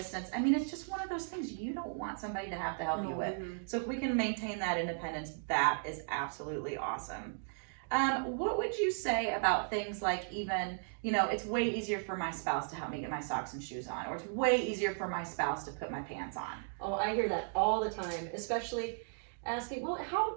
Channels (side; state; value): left; silent; digital silence